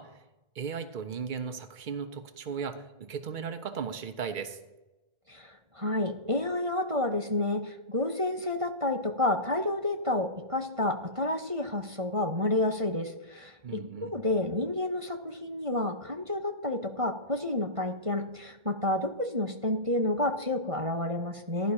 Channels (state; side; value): late; left; 2.3 ms